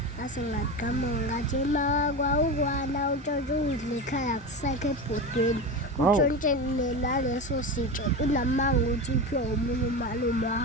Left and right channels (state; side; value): normal; both; correlation 0.23